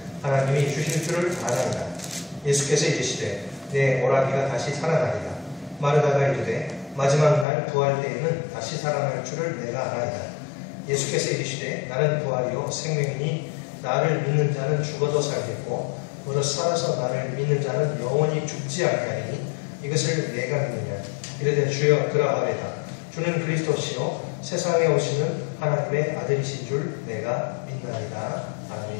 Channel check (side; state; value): right; drops out; at 7.5 s